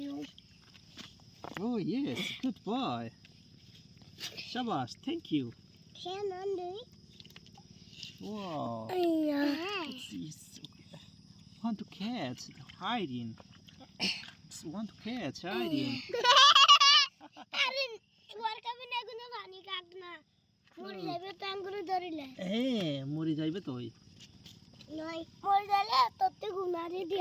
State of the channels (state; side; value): identical; both; correlation 1.00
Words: you. Oh yes, good boy. Shabash, thank you. Wow. It's want to catch hiding. It's want to catch hiding. আরে তোমার কাছে না কোনো পানি কাট না মরে যাবে তো আঙ্গুরে ধরিলে হ্যাঁ মরে যাইবে তো ওই নয় মরে গেলে ততে গুনারে